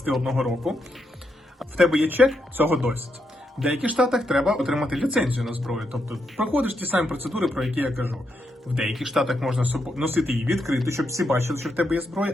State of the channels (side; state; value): both; normal; correlation 0.81